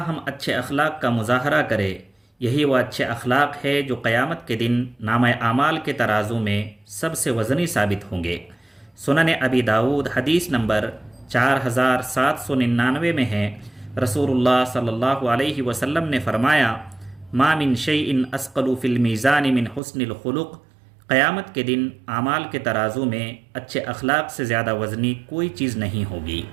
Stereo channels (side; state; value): left; drops out; at 19.8 s